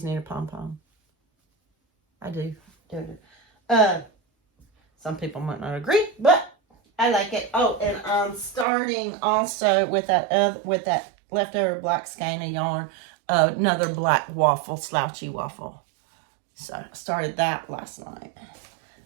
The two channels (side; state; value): left; drops out; at 8.7 s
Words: need a pom-pom. I do. Some people might not agree, but I like it. Oh, and I'm starting also with that leftover black skein of yarn, another black waffle, slouchy waffle. So I started that last night.